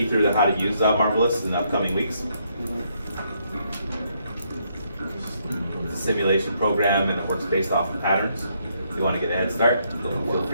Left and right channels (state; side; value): inverted; both; correlation -0.74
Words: through how to use Marvelous in the upcoming weeks. It's a simulation program and it works based off of patterns. If you want to get a head start, feel